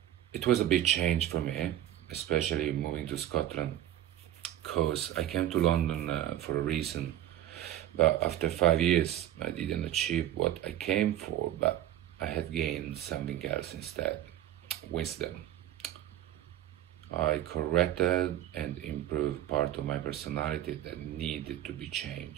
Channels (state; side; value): quieter; left; 12.7 dB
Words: it was a big change for me, especially moving to Scotland, because I came to London for a reason, but after 5 years I didn't achieve what I came for, but I had gained something else instead: wisdom. I corrected and improved part of my personality that needed to be